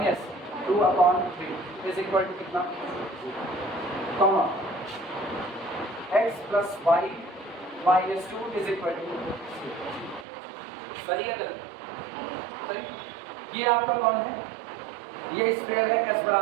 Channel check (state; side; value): drops out; left; at 10.2 s